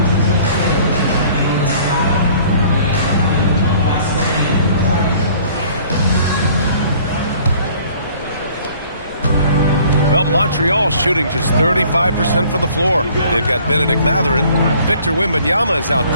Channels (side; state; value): both; inverted; correlation -0.54